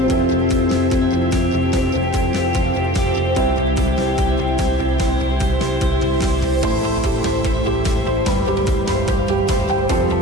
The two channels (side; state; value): both; normal; correlation 0.44